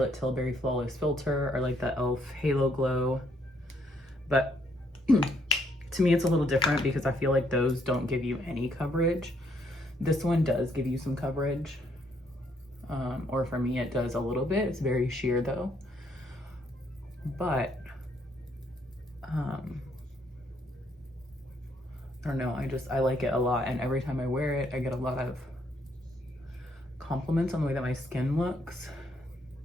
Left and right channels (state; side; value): normal; both; correlation 0.71